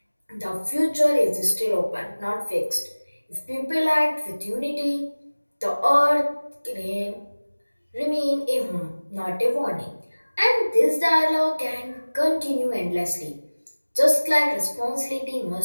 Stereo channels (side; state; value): both; inverted; correlation -1.00